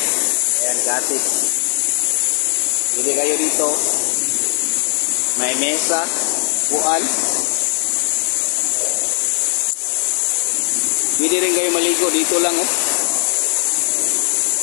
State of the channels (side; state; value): right; silent; digital silence